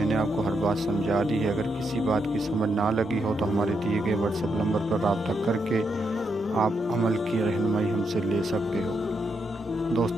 आपको हर बात समझा दी है। अगर किसी बात की समझ ना लगी हो तो हमारे दिए गए व्हाट्सएप नंबर पर रब्ता करके आप अमल की रहनुमाई हमसे ले सकते हो।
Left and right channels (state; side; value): normal; both; correlation 0.81